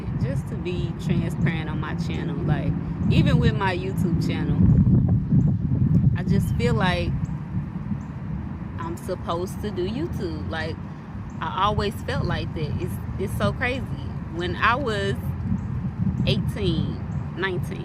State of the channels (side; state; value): both; identical; correlation 1.00